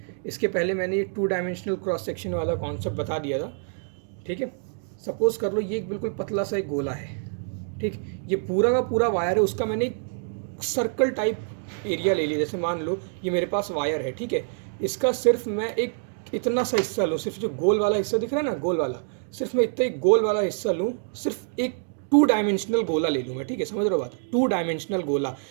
इसके पहले मैंने ये 2 डायमेंशनल क्रॉस सेक्शन वाला कॉन्सेप्ट बता दिया था। ठीक है, सपोज़ कर लो ये एक बिल्कुल पतला सा एक गोला है। ठीक, ये पूरा का पूरा वायर है, उसका मैंने एक सर्कल टाइप एरिया ले लिया। जैसे मान लो ये मेरे पास वायर है। ठीक है, इसका सिर्फ मैं एक इतना सा हिस्सा लूँ, सिर्फ जो गोल वाला हिस्सा दिख रहा है ना, गोल वाला, सिर्फ मैं इतना एक गोल वाला हिस्सा लूँ, सिर्फ एक टू डायमेंशनल गोला ले लूँ मैं, ठीक है, समझ रहे हो बात, टू डायमेंशनल गोला,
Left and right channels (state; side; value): silent; left; 61 dB below the other